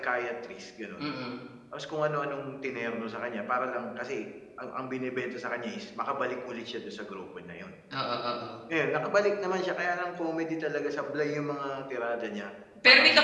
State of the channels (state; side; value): identical; both; correlation 1.00